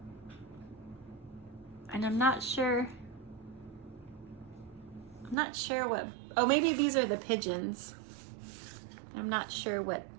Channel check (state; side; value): drops out; left; at 5.4 s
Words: And I'm not sure what, oh, maybe these are the pigeons. I'm not sure what